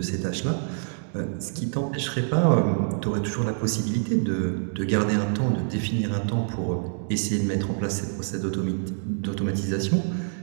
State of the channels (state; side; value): silent; left; digital silence